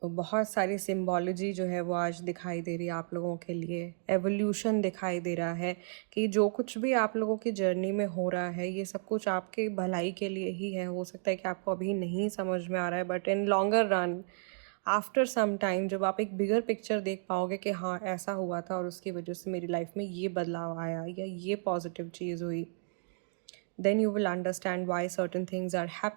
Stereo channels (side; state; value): left; silent; digital silence